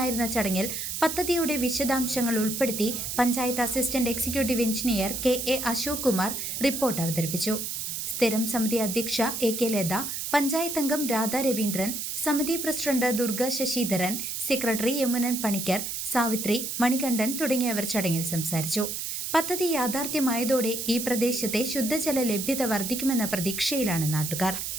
ചടങ്ങിൽ പദ്ധതിയുടെ വിശദാംശങ്ങൾ ഉൾപ്പെടുത്തി panchayat assistant executive engineer K.A.. Ashok Kumar report അവതരിപ്പിച്ചു. സ്ഥിരം സമിതി അധ്യക്ഷ എ.കെ. ലത, പഞ്ചായത്ത് അംഗം രാധാ രവീന്ദ്രൻ, സമിതി പ്രസിഡന്റ് ദുർഗ ശശിധരൻ, സെക്രട്ടറി യമുനൻ പണിക്കർ, സാവിത്രി, മണികണ്ഠൻ തുടങ്ങിയവർ ചടങ്ങിൽ സംസാരിച്ചു. പദ്ധതി യാഥാർത്ഥ്യമായതോടെ ഈ പ്രദേശത്തെ ശുദ്ധജല ലഭ്യത വർദ്ധിക്കുമെന്ന പ്രതീക്ഷയിലാണ് നാട്ടുകാർ.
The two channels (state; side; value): noise; right; hiss, 4 dB below the sound